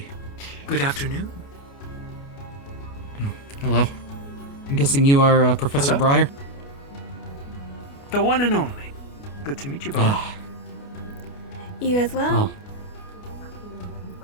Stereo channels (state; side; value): late; right; 29 ms